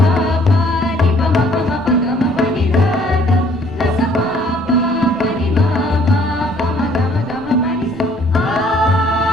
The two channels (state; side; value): normal; both; correlation 0.60